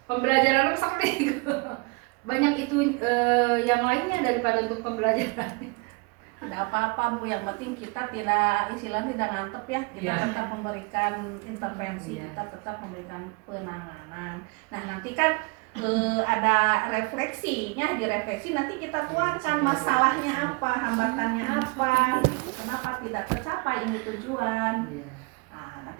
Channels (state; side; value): quieter; left; 30.4 dB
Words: pembelajaran sakti banyak itu yang lainnya daripada untuk pembelajaran. Tidak apa-apa Bu, yang penting kita tidak istilahnya tidak ngantep ya, kita tetap memberikan intervensi, kita tetap memberikan penanganan. Nah nanti kan ada refleksinya, direfleksi nanti kita tuangkan masalahnya apa, hambatannya apa, gitu. Kenapa tidak tercapai ini tujuan. Nah,